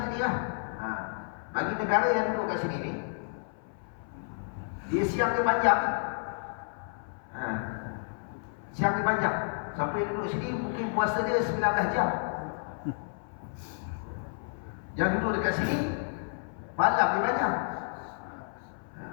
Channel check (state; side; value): silent; right; 57 dB below the other